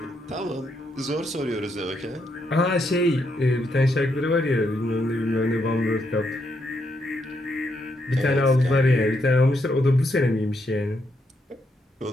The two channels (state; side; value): normal; both; correlation 0.78